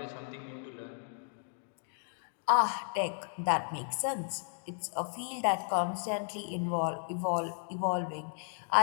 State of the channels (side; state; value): right; silent; 55 dB below the other